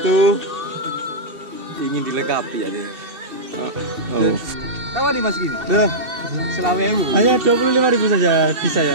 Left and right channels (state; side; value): late; left; 2.7 ms